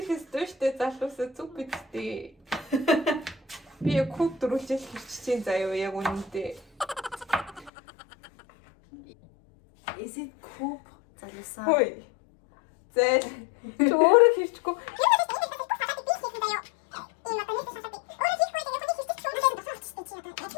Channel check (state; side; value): drops out; right; at 7.7 s